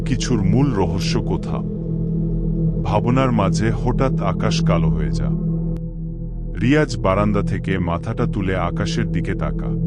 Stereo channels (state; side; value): identical; both; correlation 1.00